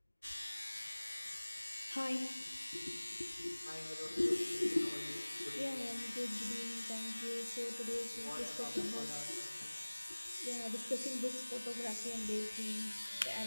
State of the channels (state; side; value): inverted; both; correlation -1.00